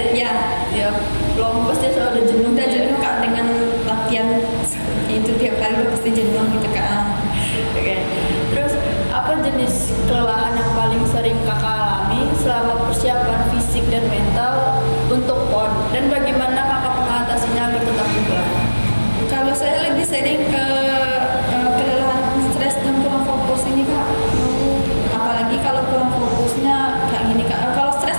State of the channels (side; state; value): both; inverted; correlation -1.00